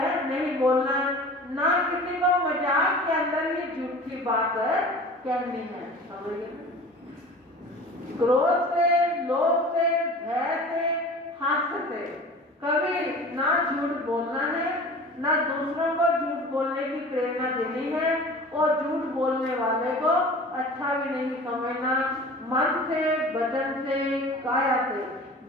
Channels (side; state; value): both; normal; correlation 0.40